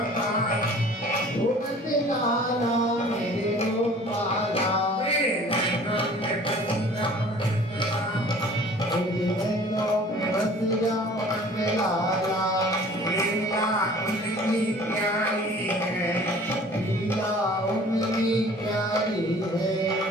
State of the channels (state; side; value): normal; both; correlation 0.48